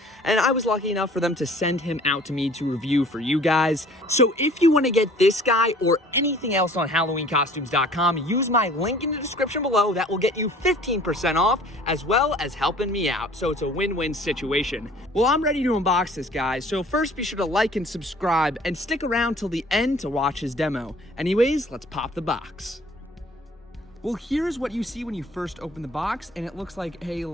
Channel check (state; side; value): normal; both; correlation 0.51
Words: and I was lucky enough for them to send him out to me to review for you guys. So if you want to get this guy or anything else on HalloweenCostumes.com, use my link in the description below. That will get you 15% off, as well as helping me out, so it's a win-win situation. Well, I'm ready to unbox this guy, so first be sure to like and subscribe and stick around till the end to watch his demo. Anyways, let's pop the box. Well, here's what you see when you first open the box, and it looks like a